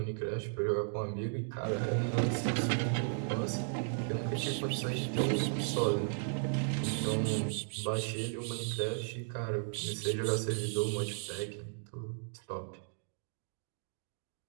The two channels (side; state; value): left; silent; digital silence